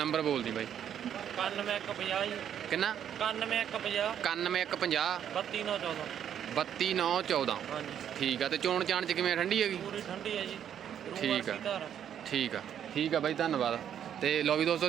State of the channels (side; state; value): left; quieter; 9.4 dB